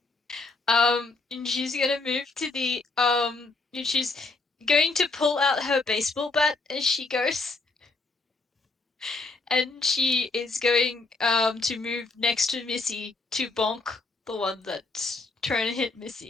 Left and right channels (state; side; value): quieter; right; 3.5 dB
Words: And she's gonna move to the and she's going to pull out her baseball bat as she goes. And she is going to move next to Missy to bonk the one that's trying to hit